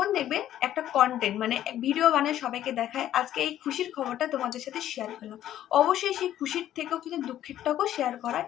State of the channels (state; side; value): quieter; right; 12.1 dB